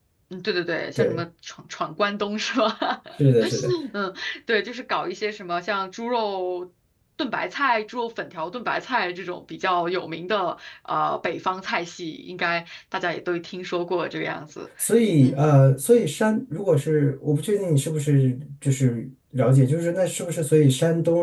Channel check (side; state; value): both; identical; correlation 1.00